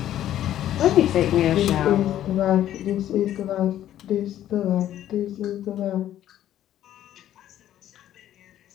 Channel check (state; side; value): quieter; right; 12.0 dB